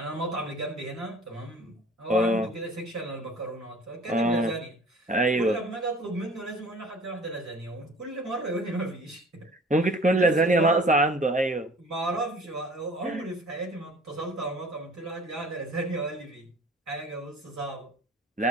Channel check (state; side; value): normal; both; correlation 0.48